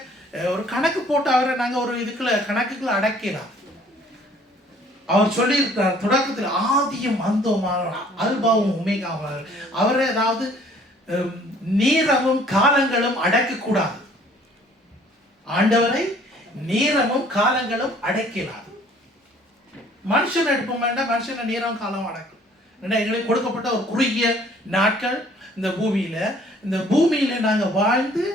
ஒரு கணக்கு போட்டு அவரை நாங்கள் ஒரு கணக்குக்குள்ள அடக்கலாம். அவர் சொல்லியிருக்கிறார் தொடக்கத்தில், ஆதியும் அந்தோமான அல்பாவும் உமேகாவார். அவரை அதாவது நேரமும் காலங்களும் அடக்கக்கூடாது. ஆண்டவரை நேரமும் காலங்களும் அடக்கலாது. மனுஷன் எடுப்போம் வேண்டாம், மனுஷனை நேரம் காலம் அடக்கும். ஏன்னா எங்களுக்கு கொடுக்கப்பட்ட ஒரு குறுகிய நாட்கள் இந்த பூமியில நாங்கள் வாழ்ந்து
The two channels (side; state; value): both; normal; correlation 0.57